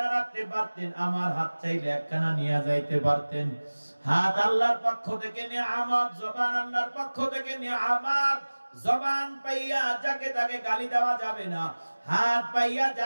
রাখতে পারতেন, আমার হাত চাইলে এক কানা নিয়ে যাইতে পারতেন। হাত আল্লাহর পক্ষ থেকে নিয়ামত, জবান আল্লাহর পক্ষ থেকে নিয়ামত। জবান পাইয়া যাকে তাকে গালি দেওয়া যাবে না, হাত পাইয়া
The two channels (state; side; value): inverted; both; correlation -1.00